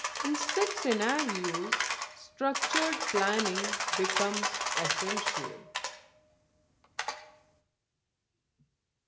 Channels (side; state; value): both; identical; correlation 1.00